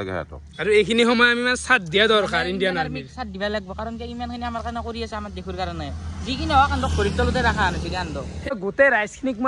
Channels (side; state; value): both; identical; correlation 1.00